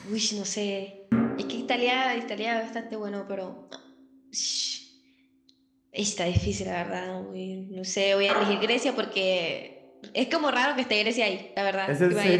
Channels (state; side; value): identical; both; correlation 1.00